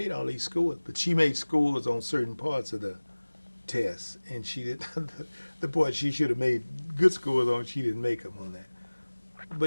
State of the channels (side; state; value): both; inverted; correlation -1.00